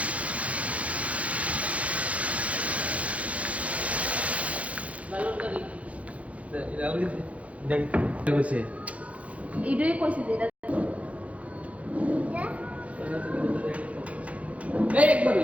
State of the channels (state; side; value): late; left; 0.065 ms